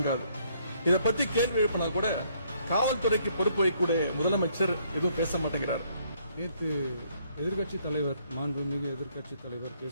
இதை பத்தி கேள்வி எழுப்பினா கூட காவல்துறைக்கு பொறுப்பு வைக்கக்கூடிய முதலமைச்சர் எதுவும் பேச மாட்டேங்கிறார். நேற்று எதிர்கட்சி தலைவர், மாண்புமிகு எதிர்கட்சி தலைவர்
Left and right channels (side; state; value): both; inverted; correlation -0.68